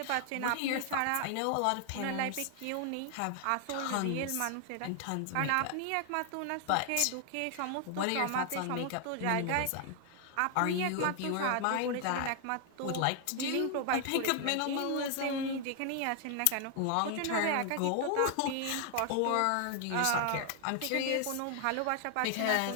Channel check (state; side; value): different; both; correlation 0.00